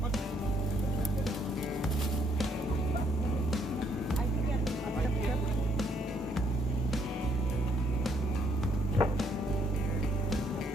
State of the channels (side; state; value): both; normal; correlation 0.70